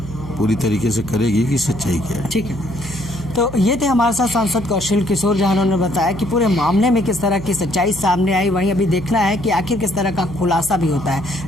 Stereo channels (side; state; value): right; noise; hum, 12 dB below the sound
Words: पूरी तरीके से करेगी कि सच्चाई क्या है। ठीक है, तो ये थे हमारे साथ सांसद कौशल किशोर, जहां उन्होंने बताया कि पूरे मामले में किस तरह की सच्चाई सामने आई। वहीं अभी देखना है कि आखिर किस तरह का खुलासा भी होता